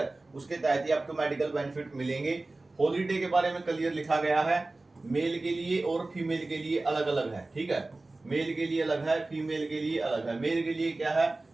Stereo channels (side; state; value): left; quieter; 3.1 dB